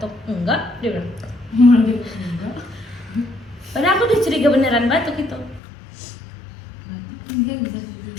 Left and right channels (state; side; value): drops out; right; at 5.6 s